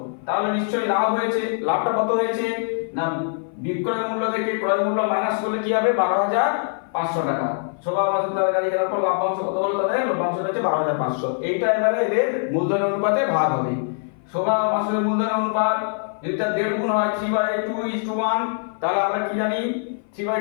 তাহলে নিশ্চয়ই লাভ হয়েছে। লাভটা কত হয়েছে? না বিক্রয় মূল্য থেকে ক্রয় মূল্য মাইনাস করলে কি হবে? 12,500 টাকা। শোভা মাসুদ তার গাড়ি কেনার পর লাভ্যাংশ কত হলো? তাদের লভ্যাংশ হচ্ছে 12,500। এইটা এবারে এদের মূলধনের অনুপাতে ভাগ হবে। শোভা মাসুদের মূলধনের অনুপাত যদি তার 1.5 গুণ হয় 3/2:1, তাহলে আমরা কি জানি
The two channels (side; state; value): right; silent; 57 dB below the other